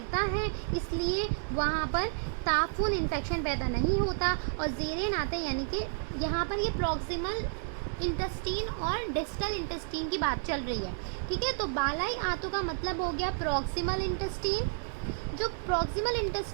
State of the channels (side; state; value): left; silent; 57 dB below the other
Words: है, इसलिए वहाँ पर ताफुन इन्फेक्शन पैदा नहीं होता। और ज़ेरेन आंतें यानी कि यहाँ पर ये प्रॉक्सिमल इंटेस्टीन और डिस्टल इंटेस्टीन की बात चल रही है। ठीक है। तो बालाई आंतों का मतलब हो गया प्रॉक्सिमल इंटेस्टीन। जो प्रॉक्सिमल